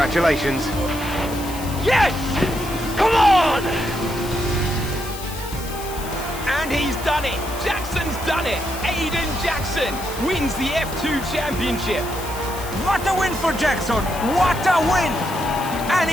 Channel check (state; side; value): noise; left; hiss, 13 dB below the sound